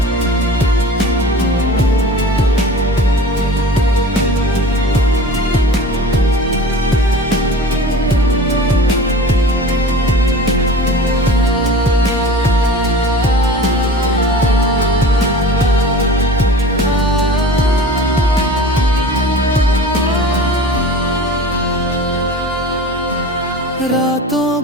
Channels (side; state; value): both; normal; correlation 0.38